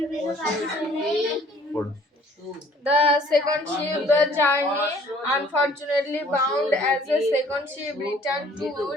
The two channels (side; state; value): both; normal; correlation 0.56